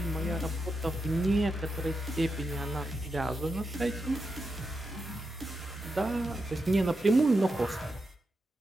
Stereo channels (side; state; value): both; normal; correlation 0.87